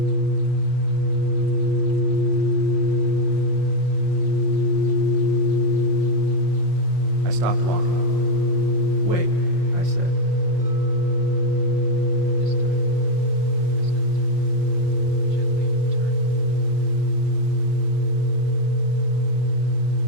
I stopped walking. Wait, I said. This time, I stepped in, gently turned.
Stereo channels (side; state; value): left; late; 5.6 ms